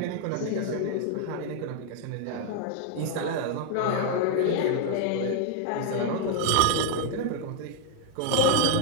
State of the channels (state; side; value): different; both; correlation 0.00